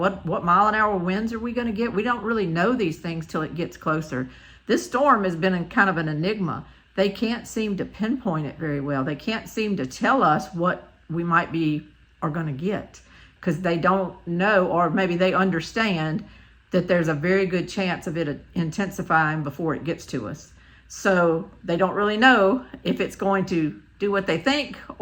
mile-an-hour winds are we going to get, we don't really know these things till it gets closer. This storm has been kind of an enigma. They can't seem to pinpoint it very well. They can't seem to tell us what we might be are going to get, because they don't know, or maybe they understand that there's a very good chance of it intensifying before it gets to us. So they don't really know if it's going to do what they think,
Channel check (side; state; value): both; identical; correlation 1.00